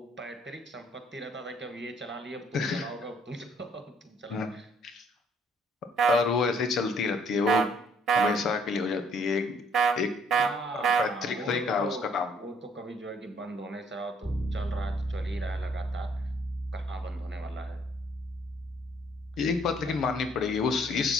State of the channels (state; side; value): normal; both; correlation 0.64